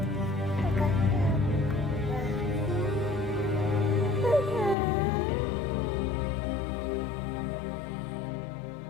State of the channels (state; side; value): drops out; right; at 4.8 s